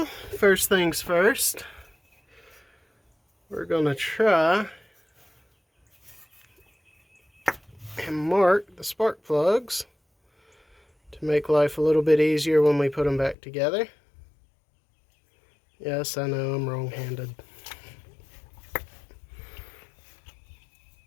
first things first, we're going to try and mark the spark plugs to make life a little bit easier when we put them back together. Yes, I know I'm wrong-handed.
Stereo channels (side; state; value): right; drops out; at 13.4 s